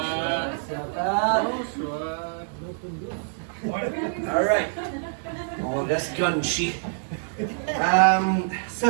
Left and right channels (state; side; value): silent; left; digital silence